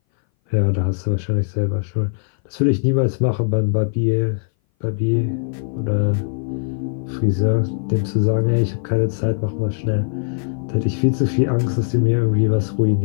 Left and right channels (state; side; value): silent; right; 60 dB below the other